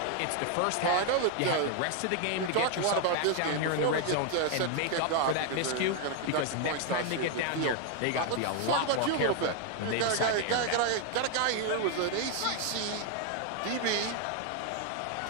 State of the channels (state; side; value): different; both; correlation 0.00